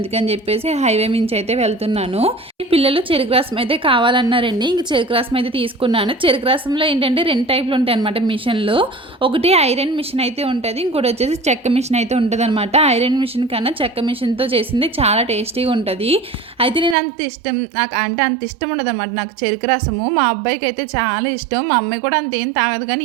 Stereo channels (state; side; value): drops out; left; at 16.9 s